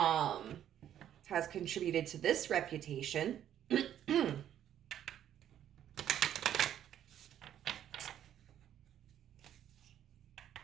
contributed to this reputation.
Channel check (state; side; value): quieter; left; 10.6 dB